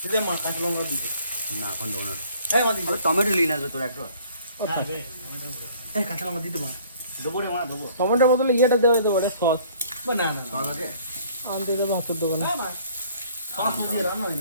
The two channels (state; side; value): inverted; both; correlation -0.56